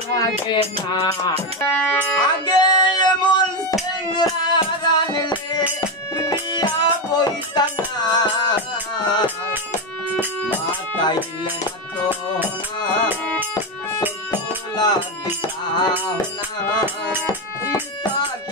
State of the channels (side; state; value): both; normal; correlation 0.11